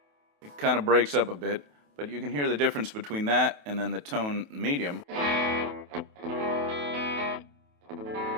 kind of breaks up a bit, but you can hear the difference between that and then the tone medium.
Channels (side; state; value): left; late; 28 ms